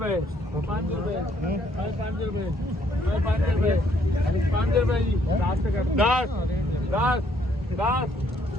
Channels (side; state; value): both; normal; correlation 0.67